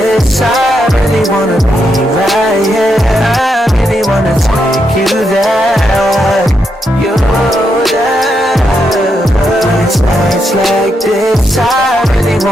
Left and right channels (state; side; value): normal; both; correlation 0.81